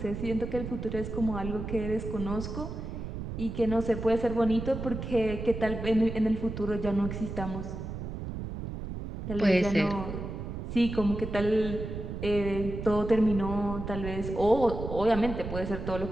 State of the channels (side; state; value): right; noise; rumble, 7 dB below the sound